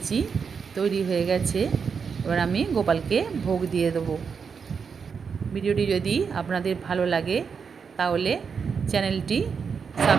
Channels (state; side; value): quieter; left; 6.0 dB